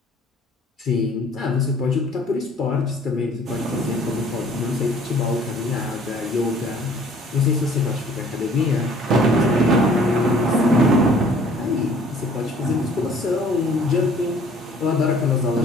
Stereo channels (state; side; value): normal; both; correlation 0.54